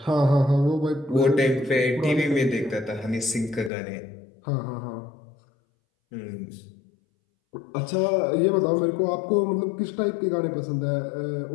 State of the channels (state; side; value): drops out; right; at 3.7 s